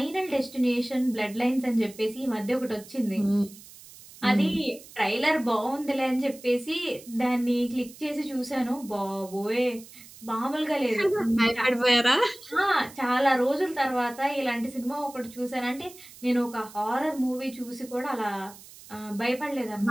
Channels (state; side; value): noise; right; hiss, 19 dB below the sound